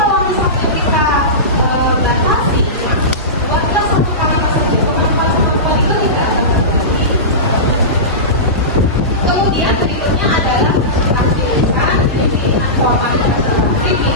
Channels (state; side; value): normal; both; correlation -0.20